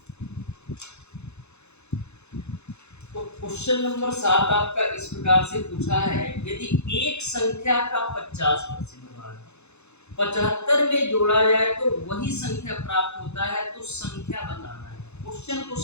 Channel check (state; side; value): late; right; 0.81 ms